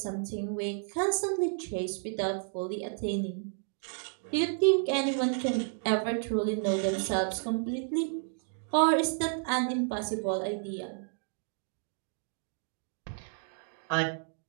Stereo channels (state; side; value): silent; left; 57 dB below the other